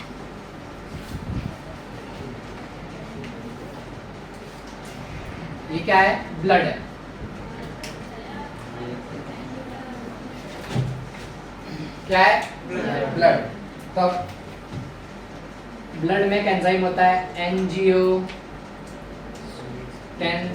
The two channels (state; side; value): identical; both; correlation 1.00